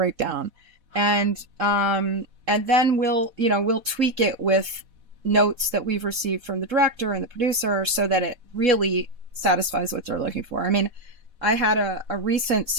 and then we'll tweak it with notes that we've received from the director and the producer, so that it really satisfies what they're looking for. I mean, I had a recent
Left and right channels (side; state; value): left; late; 4.1 ms